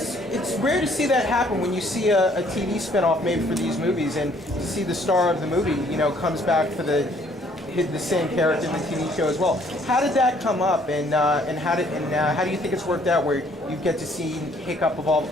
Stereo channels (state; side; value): normal; both; correlation 0.62